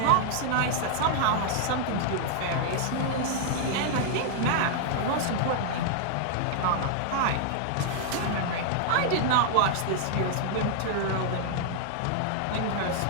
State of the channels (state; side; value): different; both; correlation -0.01